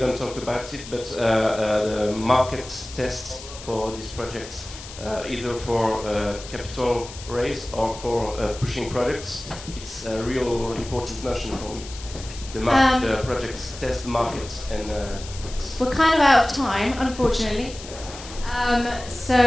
talk about it, but the market tests for these projects, either for capital raise or for pushing products, it's a real important notion for me. The projects test the market, and we're kind of out of time, unfortunately.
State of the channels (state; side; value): noise; left; hiss, 14 dB below the sound